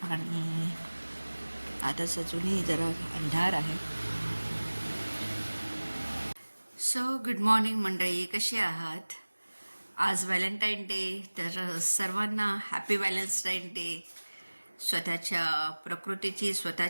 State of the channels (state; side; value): inverted; both; correlation -1.00